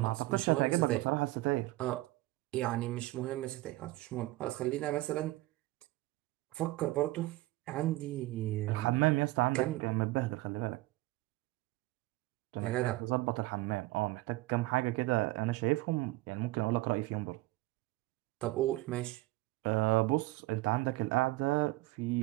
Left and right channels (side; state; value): left; quieter; 19.4 dB